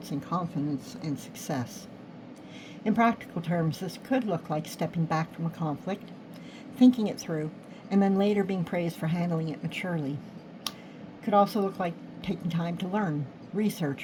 in confidence and success. In practical terms, this could look like stepping back from a conflict, thinking it through, and then later being praised for handling it maturely. It could also look like taking time to learn,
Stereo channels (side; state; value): both; identical; correlation 1.00